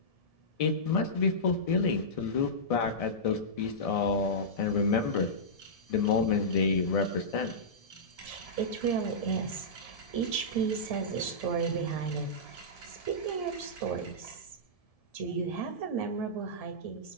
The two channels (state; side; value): late; right; 1.7 ms